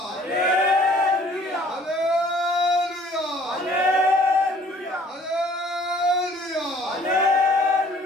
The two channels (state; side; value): normal; both; correlation 0.56